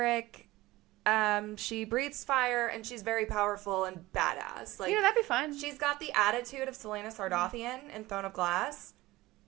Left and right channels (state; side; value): quieter; left; 18.7 dB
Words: She breathes fire, and she's very powerful and badass. Like, that'd be fun. She's got the attitude of Selena Sardothian in Throne of Glass.